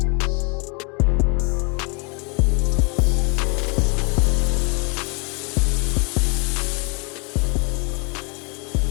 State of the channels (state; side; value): quieter; right; 33.4 dB